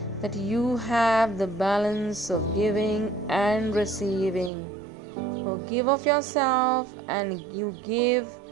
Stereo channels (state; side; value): drops out; left; at 4.5 s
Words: that you have the balance of giving and receiving. So give of yourself and you give